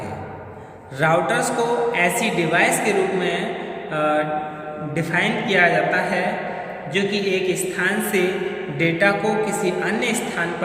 है। राउटर्स को ऐसी डिवाइस के रूप में डिफाइन किया जाता है जो कि एक स्थान से डेटा को किसी अन्य स्थान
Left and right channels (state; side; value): identical; both; correlation 1.00